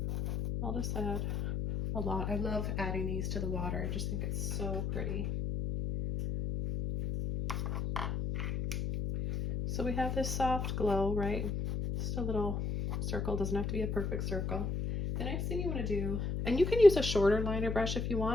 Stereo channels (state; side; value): noise; left; hum, 1 dB below the sound